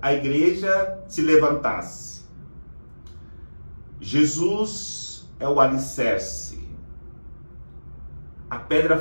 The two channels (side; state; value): both; inverted; correlation -1.00